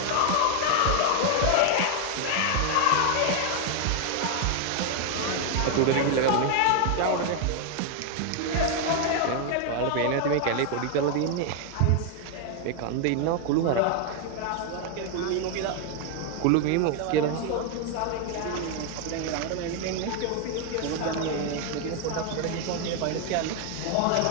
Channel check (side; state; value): both; different; correlation 0.01